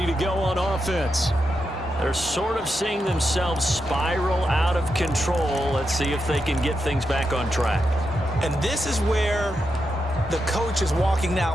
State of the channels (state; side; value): normal; both; correlation 0.86